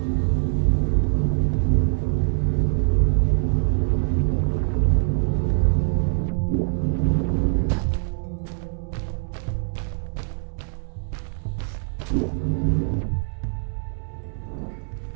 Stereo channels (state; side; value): silent; left; 63 dB below the other